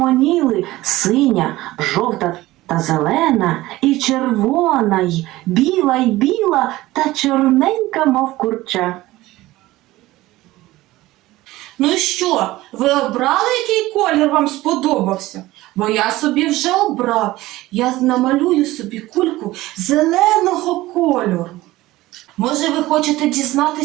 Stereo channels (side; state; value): left; quieter; 17.7 dB